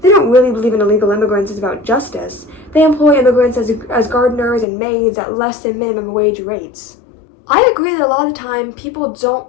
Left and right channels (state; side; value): drops out; right; at 4.7 s